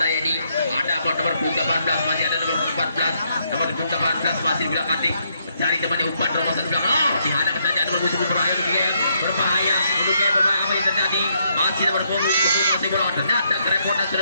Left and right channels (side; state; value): both; inverted; correlation -0.75